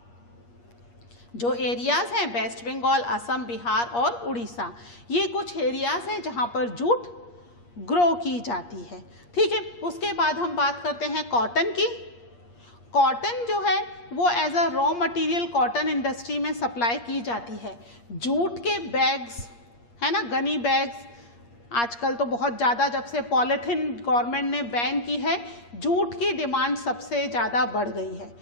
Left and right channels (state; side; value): late; right; 8.5 ms